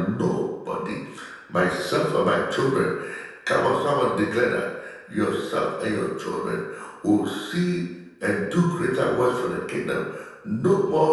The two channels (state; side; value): identical; both; correlation 1.00